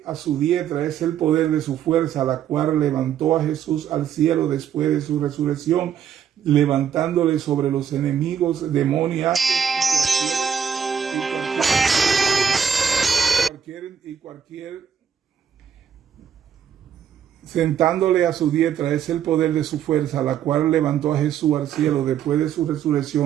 a su diestra es el poder de su fuerza, la cual levantó a Jesús al cielo después de su resurrección, levantándole sobre los enemigos demoníacos sentándole a su diestra es el poder de su fuerza, la cual levantó a Jesús al cielo después de su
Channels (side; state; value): left; quieter; 8.3 dB